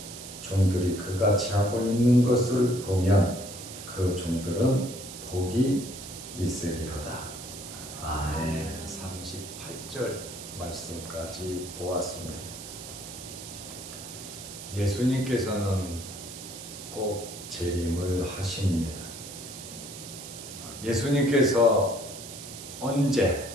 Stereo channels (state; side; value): noise; right; hiss, 12 dB below the sound